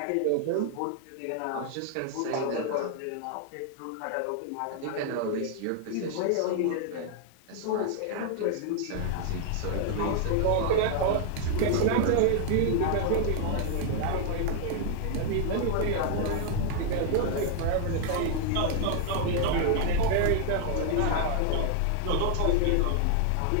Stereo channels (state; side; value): different; both; correlation 0.00